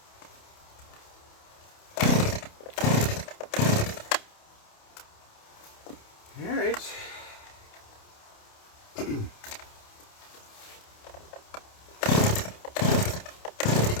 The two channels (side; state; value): right; late; 28 ms